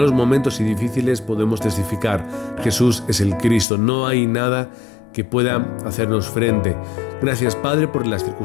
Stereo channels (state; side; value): drops out; right; at 3.7 s